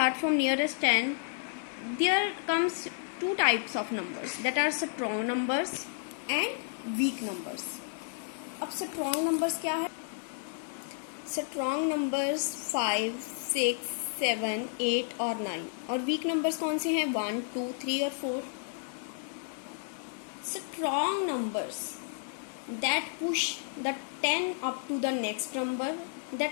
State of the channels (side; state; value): right; silent; digital silence